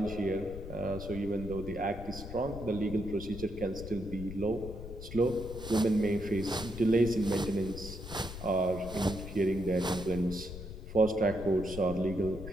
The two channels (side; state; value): left; noise; rumble, 10 dB below the sound